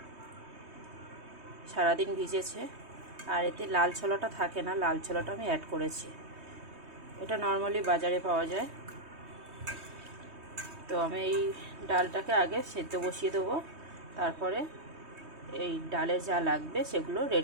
সারাদিন ভিজেছে। আর এতে লাল ছোলাটা থাকে না, লাল ছোলাটা আমি অ্যাড করেছি। এটা নর্মালি বাজারে পাওয়া যায়। তো আমি এই ডালটাকে আগে সেদ্ধ বসিয়ে দেবো, তারপরে এই ডালে যা লাগবে সেগুলো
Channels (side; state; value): left; late; 3.2 ms